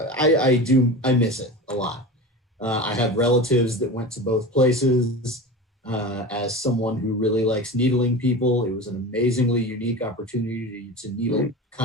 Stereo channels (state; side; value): normal; both; correlation 0.30